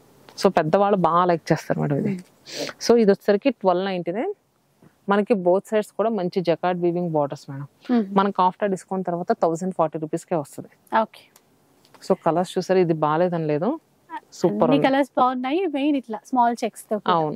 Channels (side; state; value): both; identical; correlation 1.00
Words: సో పెద్దవాళ్ళు బాగా లైక్ చేస్తారు మేడం ఇది. సో ఇది వచ్చేసరికి 1299. మనకి బోత్ సైడ్స్ కూడా మంచి జకార్డ్ వీవింగ్ బార్డర్స్ మేడం. మనకి ఆఫ్టర్ డిస్కౌంట్ తర్వాత 1040 రూపీస్కే వస్తుంది. సో కలర్స్ చూసారు, ఇది బాగాలేదని లేదు, సూపర్ కలర్స్ బాగున్నాయి. మెయిన్ ఇట్లా స్మాల్ చెక్స్ తో.